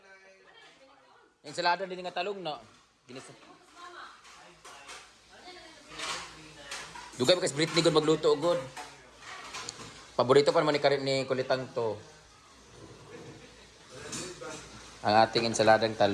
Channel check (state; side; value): identical; both; correlation 1.00